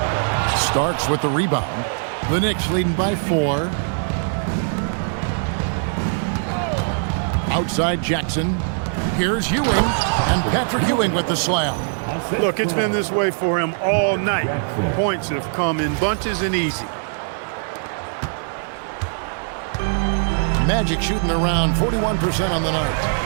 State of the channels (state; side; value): silent; left; 65 dB below the other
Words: Starks with the rebound. The Knicks leading by 4. Outside Jackson. Here's Ewing. And Patrick Ewing with the slam. Look, it's been this way for him all night. Points have come in bunches and easy. Magic shooting around 41% on the